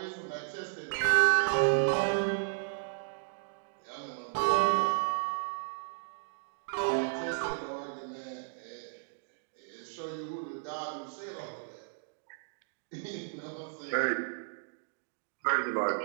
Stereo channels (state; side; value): silent; left; digital silence